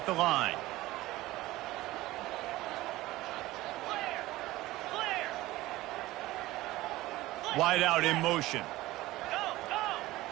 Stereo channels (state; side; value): quieter; left; 17.7 dB